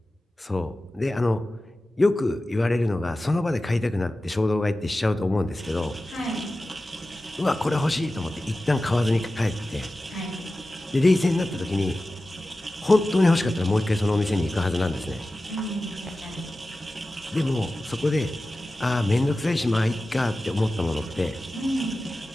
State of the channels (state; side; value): normal; both; correlation 0.95